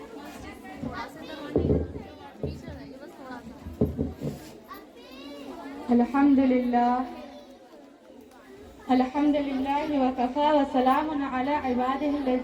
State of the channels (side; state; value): both; identical; correlation 1.00